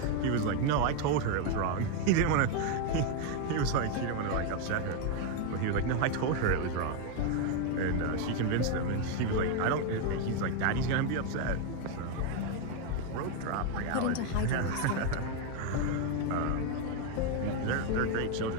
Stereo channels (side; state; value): both; different; correlation 0.01